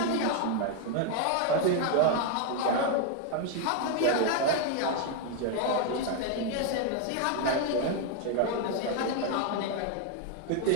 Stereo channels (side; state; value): both; different; correlation 0.01